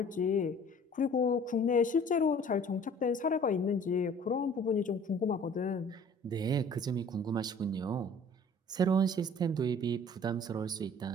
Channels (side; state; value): both; normal; correlation 0.50